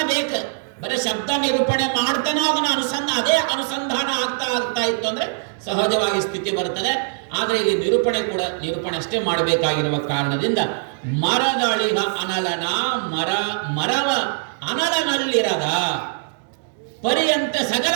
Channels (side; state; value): left; silent; digital silence